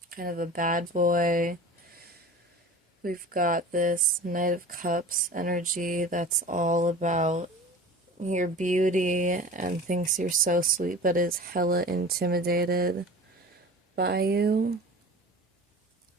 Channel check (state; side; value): normal; both; correlation 0.38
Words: Kind of a bad boy. We've got this Knight of Cups energy that's all about your beauty and thinks you're so sweet but is hella intimidated by you.